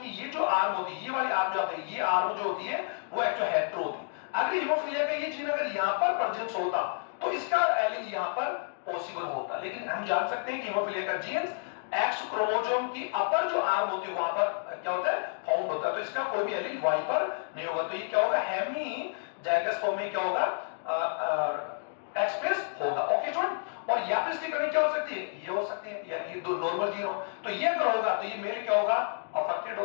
ये जो आर्म होती है, ये वाली आर्म जो होती है, ये आर्म जो होती है वो एक्चुअल हेटेरो होती है। अगर हीमोफीलिया का ये जीन अगर यहां पर प्रेजेंस होता तो इसका एलील यहां पर पॉसिबल होता, लेकिन हम जान सकते हैं कि हीमोफीलिया का जीन एक्स क्रोमोसोम की अपर जो आर्म होती है वहां पर क्या होता है, फाउंड होता है, तो इसका कोई भी एलील वाई पर नहीं होगा। तो ये क्या होगा, हेमी जाइगस फॉर्म में क्या होगा, एक्सप्रेस होगा। ओके स्टूडेंट, और या फिर इसकी कंडीशन क्या हो सकती है, ये हो सकती है, यानी ये दो नॉर्मल जीरो, तो ये अगर होगा तो ये मेल क्या होगा, अफेक्टेड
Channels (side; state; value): right; silent; digital silence